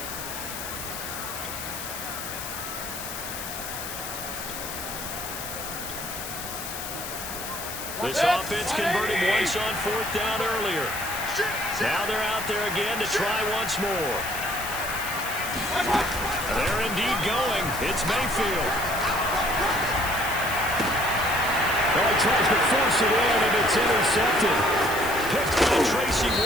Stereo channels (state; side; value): noise; left; hiss, 8 dB below the sound